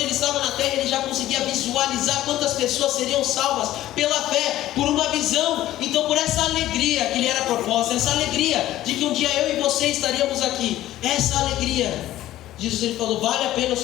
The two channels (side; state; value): right; quieter; 14.3 dB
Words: ele estava na terra, ele já conseguia visualizar quantas pessoas seriam salvas pela fé, por uma visão. Então, por essa alegria que lhe era proposta, essa alegria de que um dia eu e você estaríamos aqui, essa alegria, Jesus ele falou: vale a pena